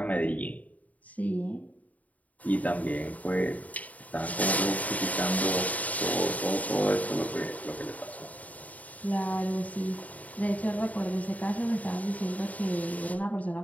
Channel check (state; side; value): late; right; 0.072 ms